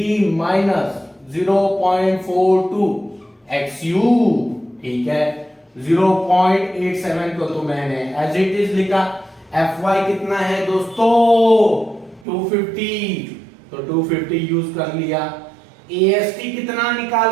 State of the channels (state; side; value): drops out; left; at 12.2 s